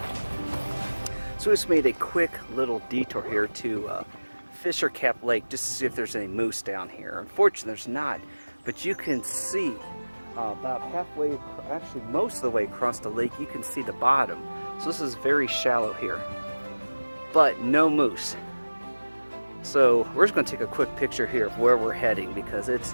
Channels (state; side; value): inverted; both; correlation -1.00